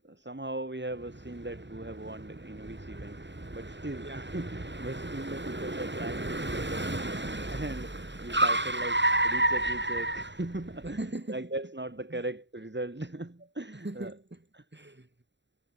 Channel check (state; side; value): late; left; 0.52 ms